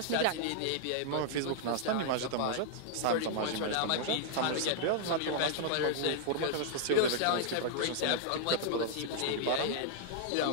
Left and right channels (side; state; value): both; different; correlation -0.01